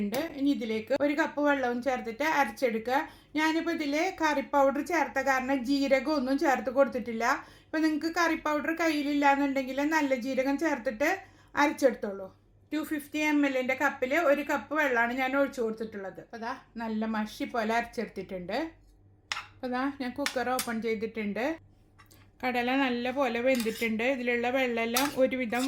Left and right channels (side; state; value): both; identical; correlation 1.00